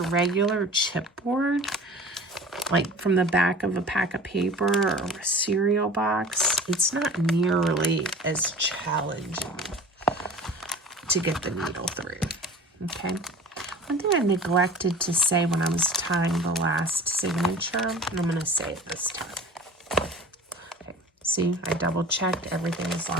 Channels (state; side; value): normal; both; correlation 0.41